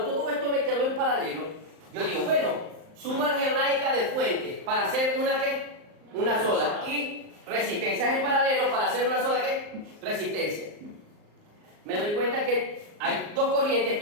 todo esto me quedó en paralelo, yo digo, bueno, suma algebraica de fuente para hacer una ¿qué? Una sola. Y resistencias en paralelo para hacer una sola ¿qué? Resistencia. Me doy cuenta que hay dos corrientes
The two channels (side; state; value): left; late; 38 ms